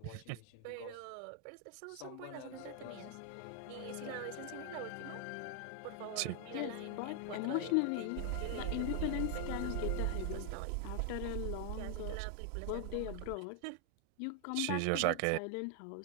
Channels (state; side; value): different; both; correlation 0.00